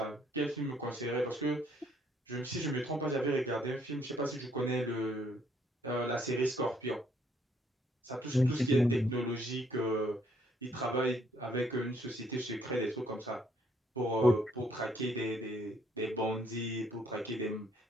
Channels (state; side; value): normal; both; correlation 0.67